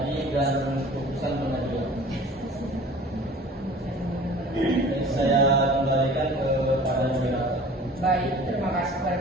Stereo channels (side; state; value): both; normal; correlation 0.45